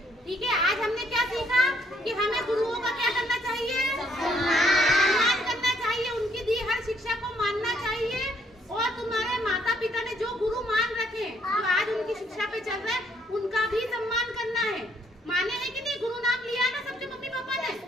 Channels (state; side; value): normal; both; correlation 0.69